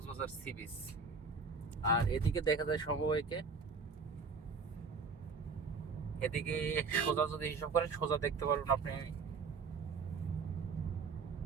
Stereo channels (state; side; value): quieter; left; 4.8 dB